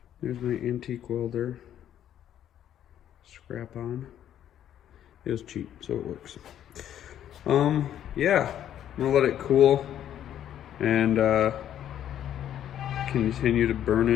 There's my antique welder. Scrap on. It was cheap, so it works. Yeah, I'm gonna let it cool and continue to burn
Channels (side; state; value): right; quieter; 10.7 dB